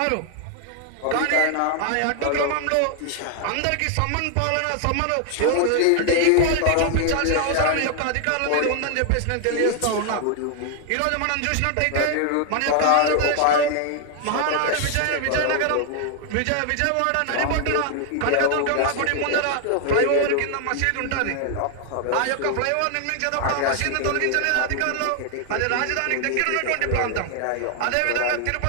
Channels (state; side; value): different; both; correlation 0.00